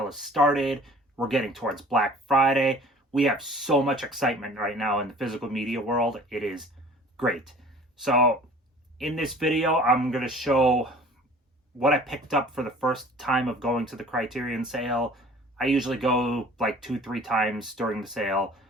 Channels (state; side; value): normal; both; correlation 0.47